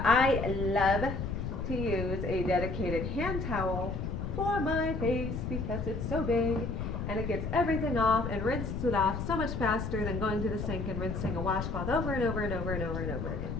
I love to use a dedicated hand towel for my face because it's so big and it gets everything off and rinses it off so much faster than going to the sink and rinsing a washcloth over and over again.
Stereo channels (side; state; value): left; noise; rumble, 3 dB below the sound